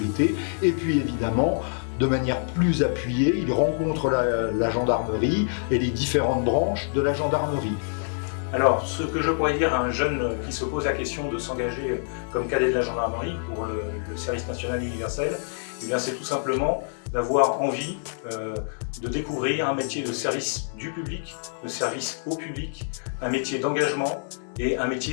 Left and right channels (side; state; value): right; silent; 57 dB below the other